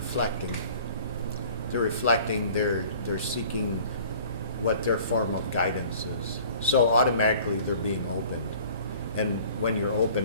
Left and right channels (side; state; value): both; inverted; correlation -0.50